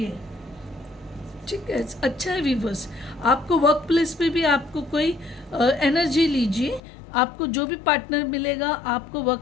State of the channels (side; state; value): right; drops out; at 6.8 s